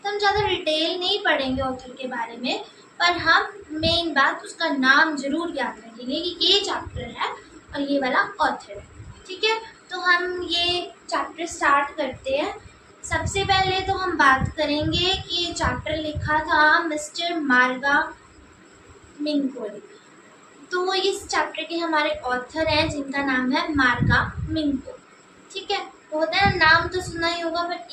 हम ज़्यादा डिटेल नहीं पढ़ेंगे ऑथर के बारे में, पर हम मेन बात उसका नाम जरूर याद रखेंगे कि ये चैप्टर है और ये वाला ऑथर है। ठीक है, तो हम ये चैप्टर स्टार्ट करते हैं। सबसे पहले तो हम बात करेंगे कि ये चैप्टर लिखा था मिस्टर मार्गा मिंकोली। तो इस चैप्टर के हमारे ऑथर हैं जिनका नाम है मार्गा मिंको। ठीक है, तो होता है नाम तो सुना ही होगा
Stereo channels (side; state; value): both; identical; correlation 1.00